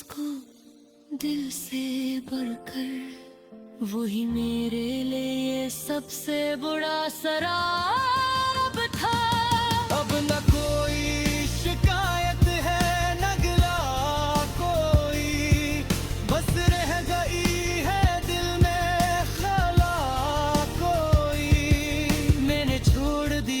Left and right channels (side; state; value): both; identical; correlation 1.00